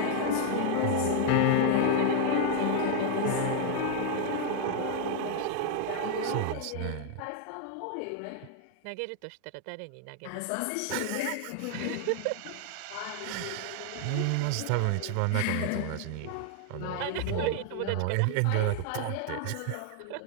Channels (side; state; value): both; different; correlation 0.00